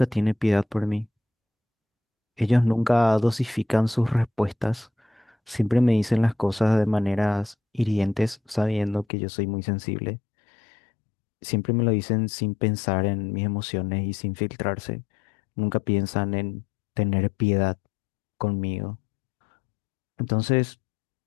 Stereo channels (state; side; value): drops out; right; at 9.1 s